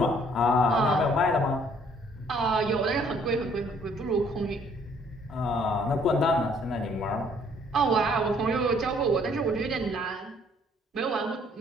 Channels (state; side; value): normal; both; correlation 0.62